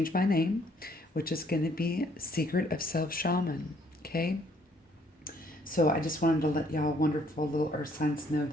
my name, which is going to be Secret of Self Shaman. Okay? So I just wanted to let y'all wonderful little earth signs know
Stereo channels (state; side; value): normal; both; correlation 0.65